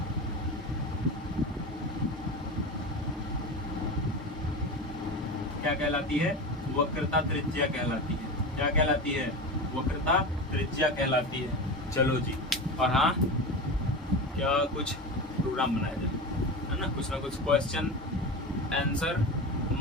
क्या कहलाती है? वक्रता त्रिज्या कहलाती है। क्या कहलाती है? वक्रता त्रिज्या कहलाती है। चलो जी, और हाँ, क्या कुछ प्रोग्राम बनाया जाए, है ना? कुछ ना कुछ क्वेश्चन आंसर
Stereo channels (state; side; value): normal; both; correlation 0.25